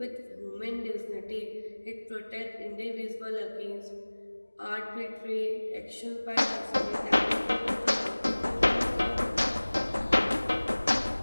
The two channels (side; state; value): both; inverted; correlation -1.00